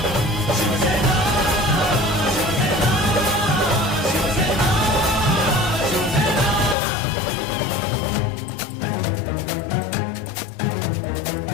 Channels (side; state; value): right; drops out; at 6.8 s